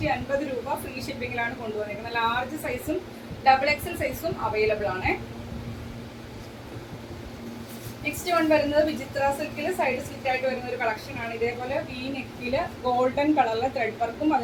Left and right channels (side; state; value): both; identical; correlation 1.00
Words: രൂപ ഫ്രീ ഷിപ്പിംഗിലാണ് കൊണ്ടുവന്നിരിക്കുന്നത്. ലാർജ് സൈസും XXL സൈസും അവൈലബിൾ ആണ്. നെക്സ്റ്റ് വൺ വരുന്നത് വിചിത്ര സിൽക്കിൽ സൈഡ് സ്ലിറ്റ് ആയിട്ട് വരുന്ന ഒരു കളക്ഷൻ ആണ്. ഇതേപോലെ വി നെക്കിൽ ഗോൾഡൻ കളറിലെ ത്രെഡ് വർക്കും